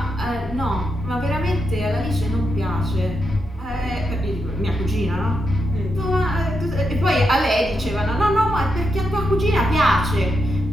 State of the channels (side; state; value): both; normal; correlation 0.84